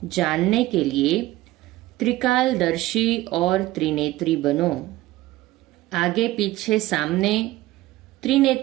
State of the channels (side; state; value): left; quieter; 17.2 dB